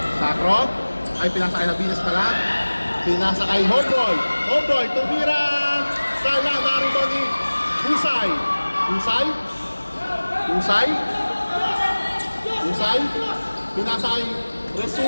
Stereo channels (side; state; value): both; inverted; correlation -1.00